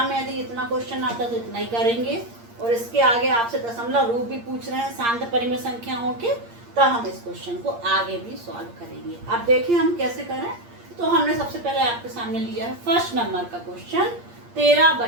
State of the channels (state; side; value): late; left; 8.6 ms